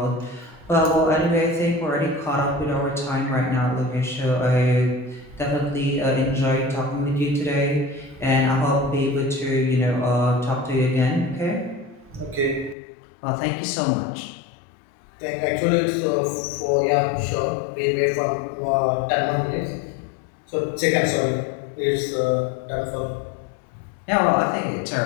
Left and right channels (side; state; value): right; drops out; at 12.8 s